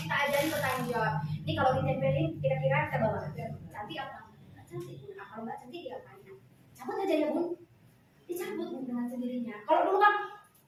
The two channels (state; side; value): identical; both; correlation 1.00